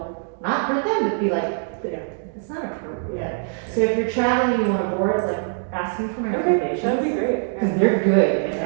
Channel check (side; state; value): left; silent; digital silence